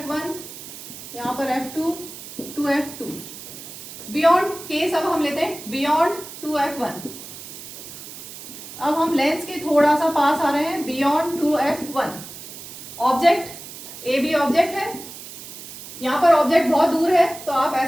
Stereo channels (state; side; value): noise; right; hiss, 13 dB below the sound